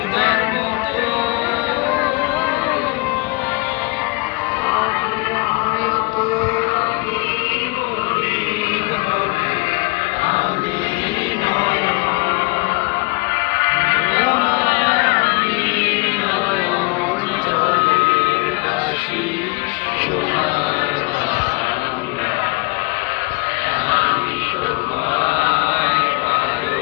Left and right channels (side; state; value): right; quieter; 27.4 dB